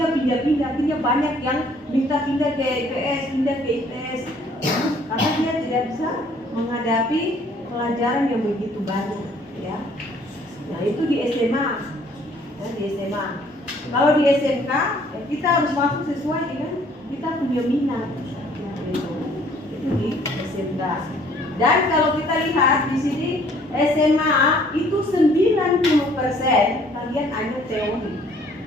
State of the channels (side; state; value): both; normal; correlation 0.59